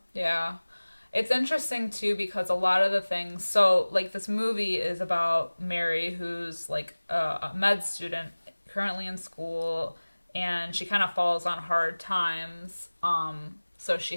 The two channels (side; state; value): both; inverted; correlation -1.00